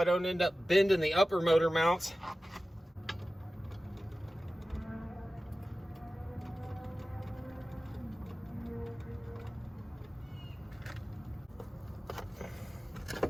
don't end up bending the upper motor mounts.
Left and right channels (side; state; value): both; normal; correlation 0.96